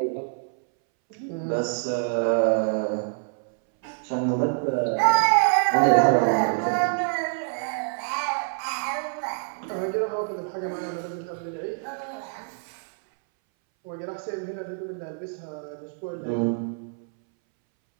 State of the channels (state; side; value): silent; left; 61 dB below the other